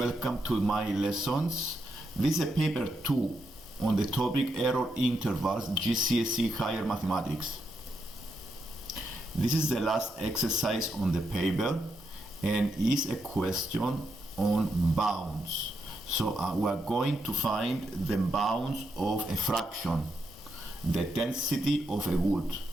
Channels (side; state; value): both; normal; correlation 0.82